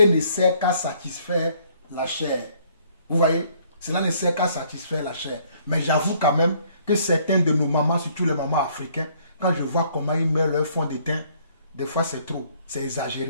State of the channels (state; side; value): inverted; both; correlation -0.63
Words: ne sert qu'à satisfaire la chair. Vous voyez? Cela ne sert qu'à satisfaire la chair. Mais j'avoue quand même que certains de nos mamans, surtout les mamans africaines, quand je vois comment ils mettent leur fond de teint, des fois c'est trop, c'est